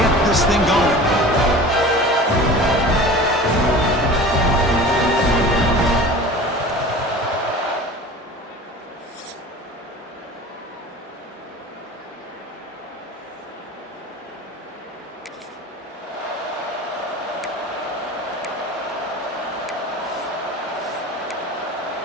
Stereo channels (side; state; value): both; normal; correlation 0.38